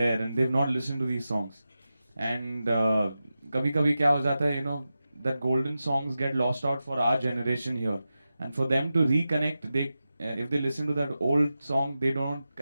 and they've not listened to these songs and कभी कभी क्या हो जाता है, you know, that golden songs get lost out for our generation here and for them to reconnect, they if they listen to that old song they don't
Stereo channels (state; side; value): inverted; both; correlation -0.92